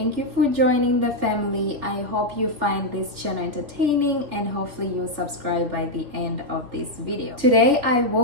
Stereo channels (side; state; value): left; late; 3.4 ms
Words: you for joining the family. I hope you find this channel entertaining and hopefully you'll subscribe by the end of this video. Today I